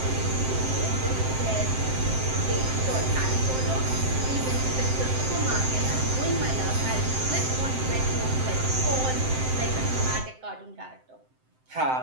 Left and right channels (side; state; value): left; late; 7.7 ms